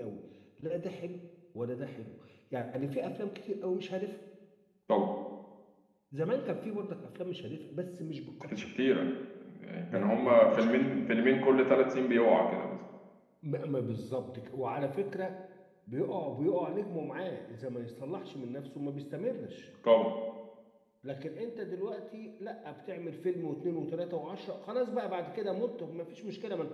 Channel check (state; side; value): identical; both; correlation 1.00